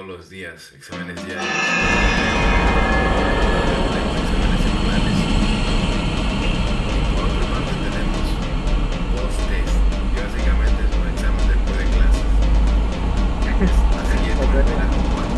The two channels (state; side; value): identical; both; correlation 1.00